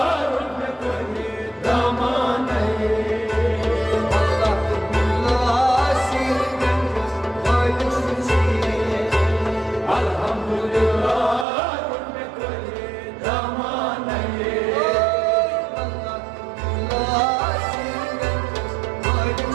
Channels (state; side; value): drops out; left; at 11.5 s